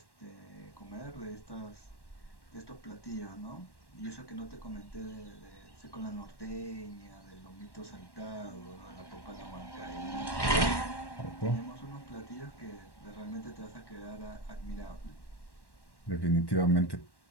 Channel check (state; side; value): late; right; 1.1 ms